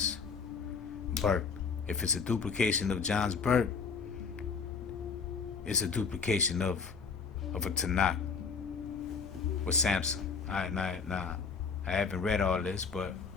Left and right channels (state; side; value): quieter; right; 5.5 dB